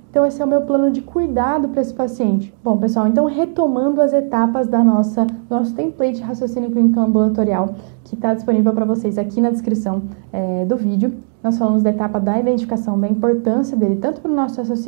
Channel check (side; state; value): left; silent; digital silence